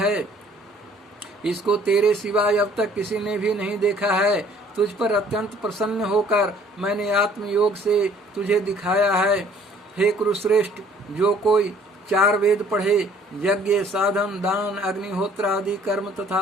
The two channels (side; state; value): both; normal; correlation 0.57